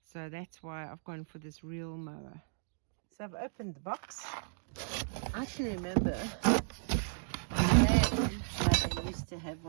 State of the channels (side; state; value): left; silent; digital silence